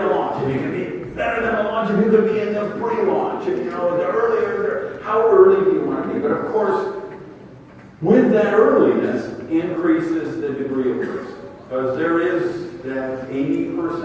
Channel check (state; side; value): identical; both; correlation 1.00